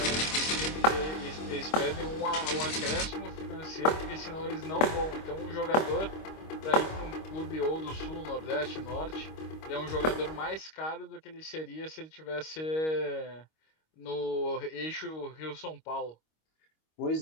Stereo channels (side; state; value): right; late; 25 ms